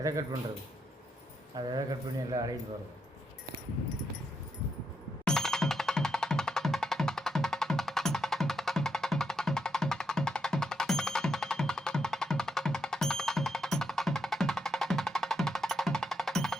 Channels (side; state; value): both; normal; correlation 0.81